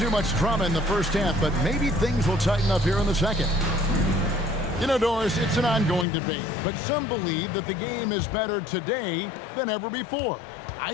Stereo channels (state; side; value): drops out; right; at 6.1 s